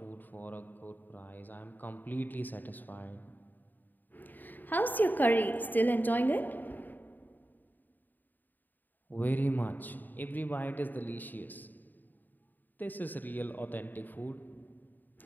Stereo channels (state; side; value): late; right; 0.088 ms